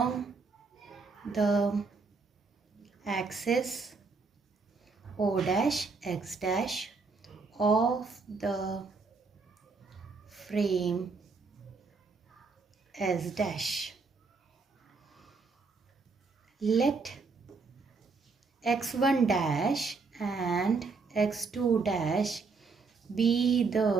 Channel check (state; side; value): quieter; left; 4.5 dB